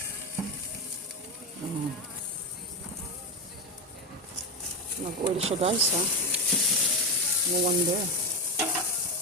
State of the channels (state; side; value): normal; both; correlation 0.13